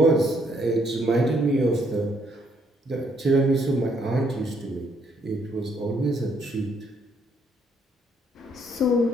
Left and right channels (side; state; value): both; normal; correlation 0.69